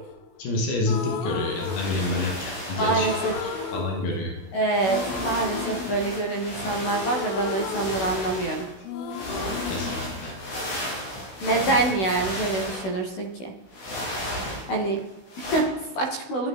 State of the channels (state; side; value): late; right; 16 ms